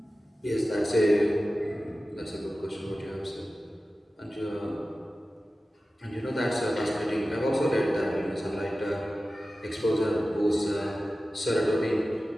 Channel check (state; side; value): normal; both; correlation 0.95